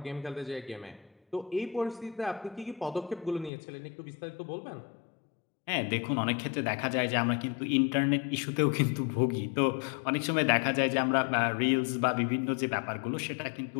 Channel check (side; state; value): right; drops out; at 3.5 s